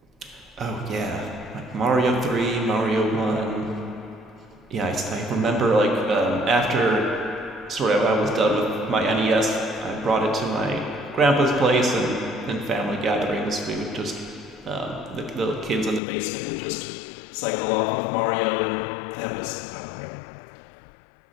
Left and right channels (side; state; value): right; drops out; at 16.0 s